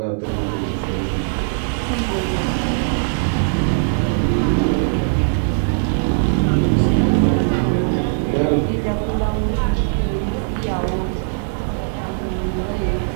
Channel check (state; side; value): silent; left; 57 dB below the other